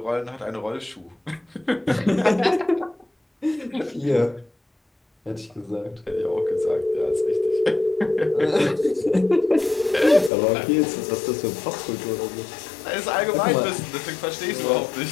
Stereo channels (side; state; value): right; drops out; at 10.3 s